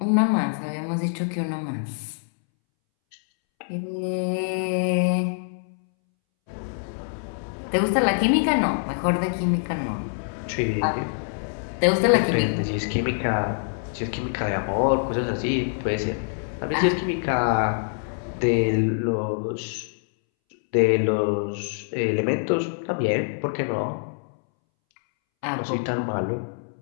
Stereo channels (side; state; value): right; silent; 62 dB below the other